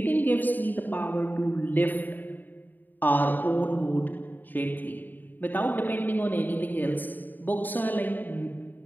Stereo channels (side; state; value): right; late; 0.089 ms